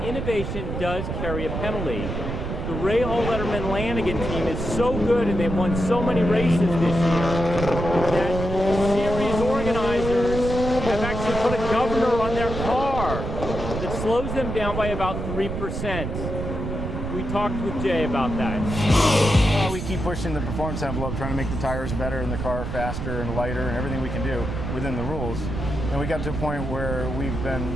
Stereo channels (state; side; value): noise; right; rumble, 4 dB below the sound